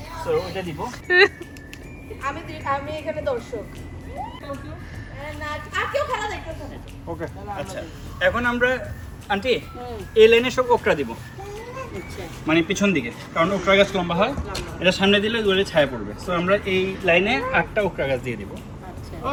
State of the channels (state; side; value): identical; both; correlation 1.00